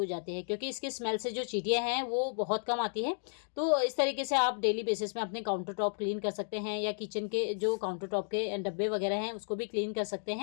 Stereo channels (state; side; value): silent; right; digital silence